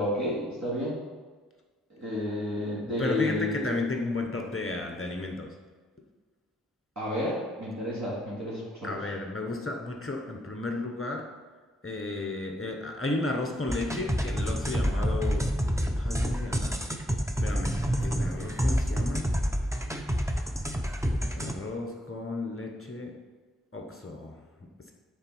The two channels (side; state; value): both; normal; correlation 0.74